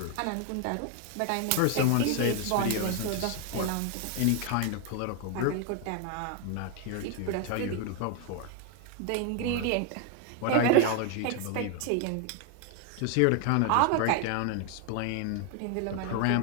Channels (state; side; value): different; both; correlation 0.01